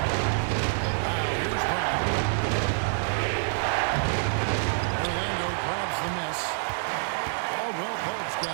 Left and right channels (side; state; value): left; silent; digital silence